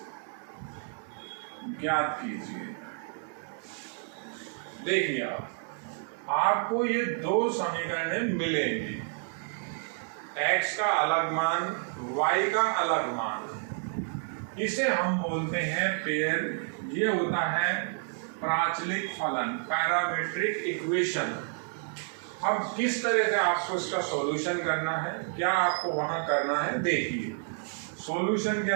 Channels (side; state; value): left; silent; 58 dB below the other